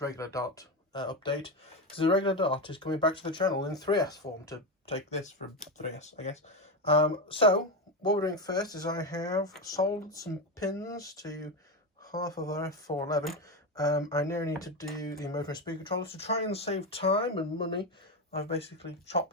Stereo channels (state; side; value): normal; both; correlation 0.14